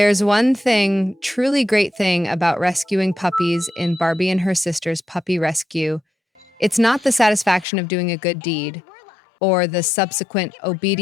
one thing, truly great thing about rescuing puppies in Barbie and Her Sisters Puppy Rescue, it's not the satisfaction of doing a good deed or the subsequent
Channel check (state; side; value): drops out; right; at 7.7 s